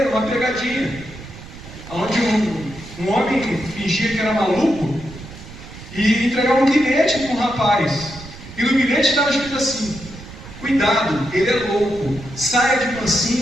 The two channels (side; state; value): right; noise; rumble, 16 dB below the sound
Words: uma pegadinha, onde um homem fingia que era maluco e entregava um bilhete para um rapaz. E no bilhete estava escrito assim: cuidado, ele é louco, saia de